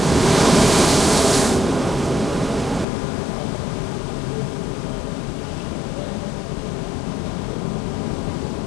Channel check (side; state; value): right; drops out; at 2.9 s